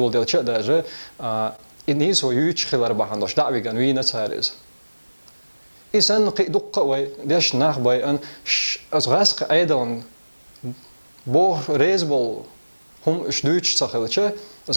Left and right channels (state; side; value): inverted; both; correlation -1.00